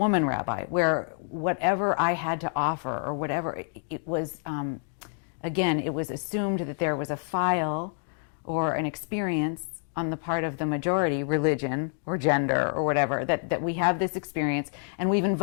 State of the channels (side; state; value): right; silent; 60 dB below the other